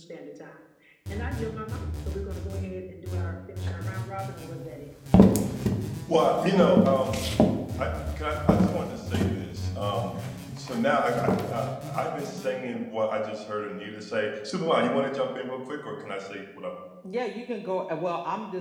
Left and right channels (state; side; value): identical; both; correlation 1.00